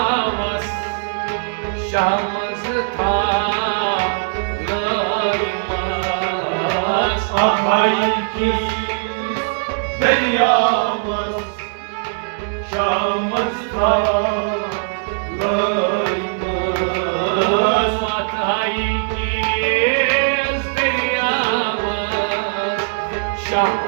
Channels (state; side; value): silent; left; digital silence